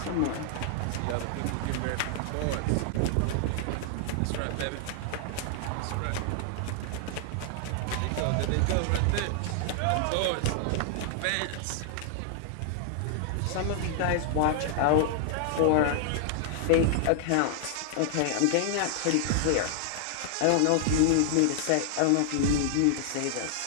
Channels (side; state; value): both; different; correlation 0.00